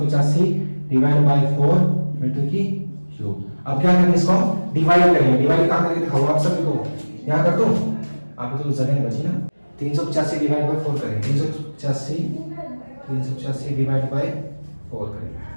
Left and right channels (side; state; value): both; inverted; correlation -1.00